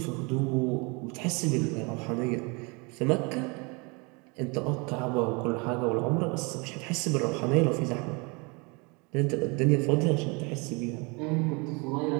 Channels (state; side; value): quieter; left; 30.0 dB